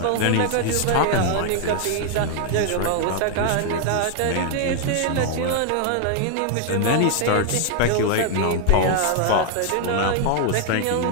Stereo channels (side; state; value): both; different; correlation 0.00